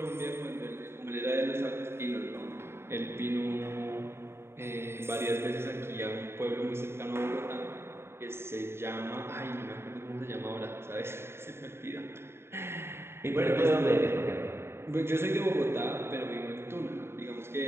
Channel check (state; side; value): late; left; 0.12 ms